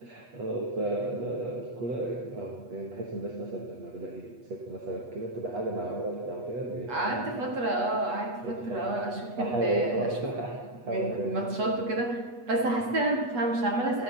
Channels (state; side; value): late; left; 8.3 ms